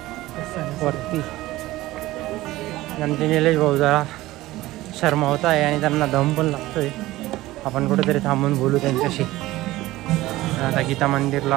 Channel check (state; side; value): quieter; left; 17.3 dB